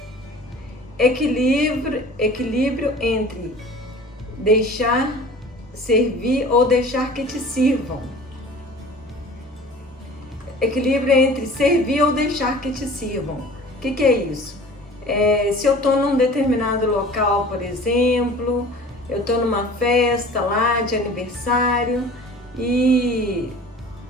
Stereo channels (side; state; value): both; normal; correlation 0.44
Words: Equilíbrio entre deixar servir ou deixar que te sirvam. Equilíbrio entre servir ou deixar que te sirvam. O que é isso? Se eu estou num determinado local, por exemplo, eu estou numa festa lá de aniversário e